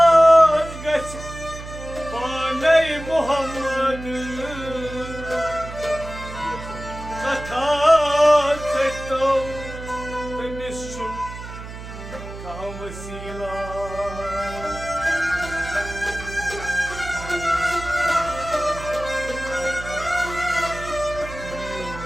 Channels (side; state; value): right; noise; hum, 12 dB below the sound